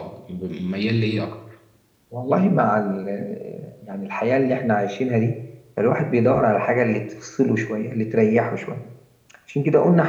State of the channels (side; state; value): both; identical; correlation 1.00